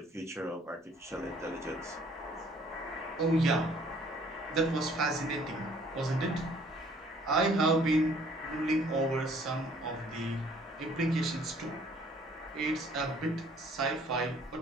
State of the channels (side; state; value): both; normal; correlation 0.58